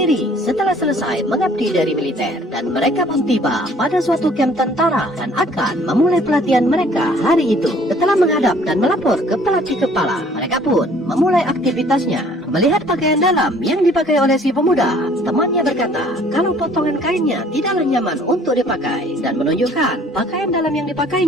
setelah selesai mengabdi dari militer. Dan mereka pun tiba pada suatu kamp tentara dan akan memulai pelatihan mereka hari itu. Setelah menghadap dan melapor ke pelatih kepala, mereka pun memulai aktivitasnya. Melihat pakaian dalam yang dipakai oleh si pemuda, temannya berkata kalau potongan kainnya tidaklah nyaman untuk dipakai, dan menunjukkan pakaian dalam yang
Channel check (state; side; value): normal; both; correlation 0.56